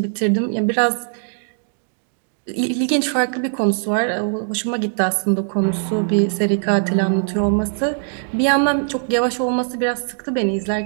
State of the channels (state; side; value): silent; left; digital silence